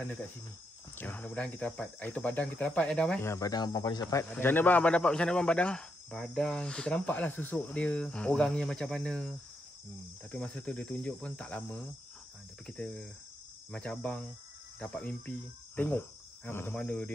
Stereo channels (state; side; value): normal; both; correlation 0.81